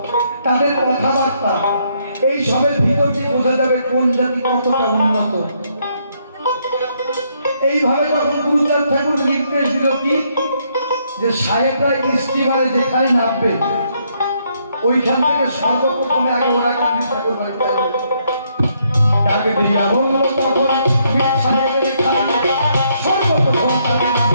তাদের কথাবার্তা, এই সবের ভিতর দিয়ে বোঝা যাবে কোন জাতি কতটা উন্নত। এইভাবে তখন গুরুচাঁদ ঠাকুর নির্দেশ দিল কি, যে সাহেবরা স্টিমারে যেখানে নামবে ওইখান থেকে সর্বপ্রথমে আগে ওরা কান্দি ঠাকুর বাড়িতে ডাকে দিয়া বলল, তখন সাহেবের সর্বপ্রথম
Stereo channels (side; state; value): both; inverted; correlation -0.73